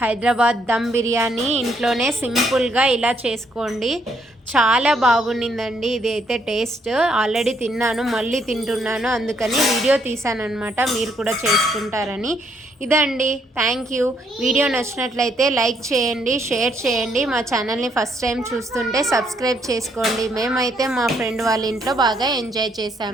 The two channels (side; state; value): both; normal; correlation 0.72